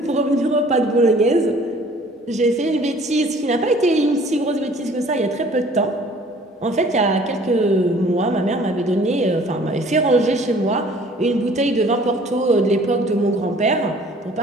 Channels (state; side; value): normal; both; correlation 0.53